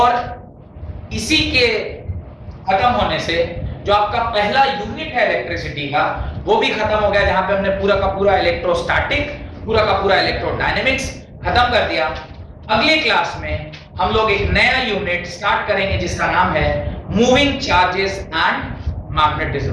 इसी के खत्म होने से जो आपका पहला यूनिट है इलेक्ट्रिसिटी का वो भी खत्म हो गया, जहां पे हमने पूरा का पूरा इलेक्ट्रोस्टैटिक, पूरा का पूरा इलेक्ट्रोडायनेमिक्स खत्म कर दिया। अगले क्लास में हम लोग एक नया यूनिट स्टार्ट करेंगे जिसका नाम है मूविंग चार्जेस एंड मैग्नेटिज्म।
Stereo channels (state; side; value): identical; both; correlation 1.00